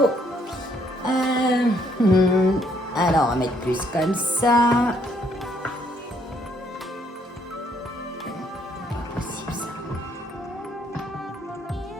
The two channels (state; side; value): normal; both; correlation 0.68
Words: Alors, on va mettre plus comme ça. Pas possible, ça.